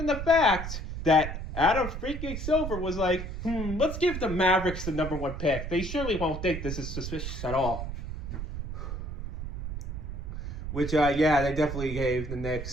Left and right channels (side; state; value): right; noise; rumble, 6 dB below the sound